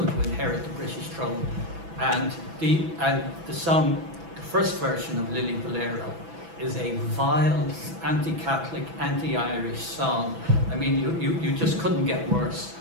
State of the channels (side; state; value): left; late; 6.0 ms